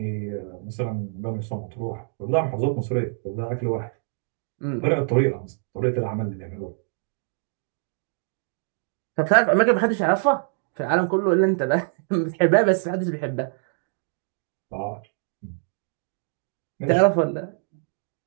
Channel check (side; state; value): left; silent; digital silence